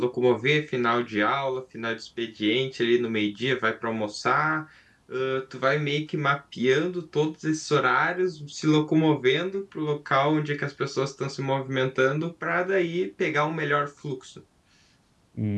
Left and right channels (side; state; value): both; identical; correlation 1.00